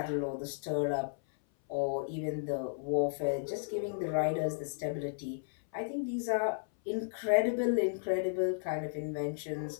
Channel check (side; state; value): right; silent; 55 dB below the other